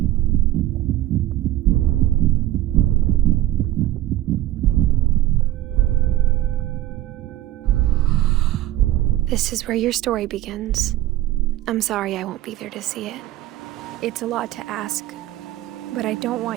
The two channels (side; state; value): left; quieter; 14.7 dB